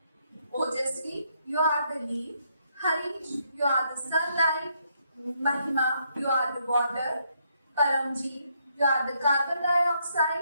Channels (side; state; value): both; inverted; correlation -0.74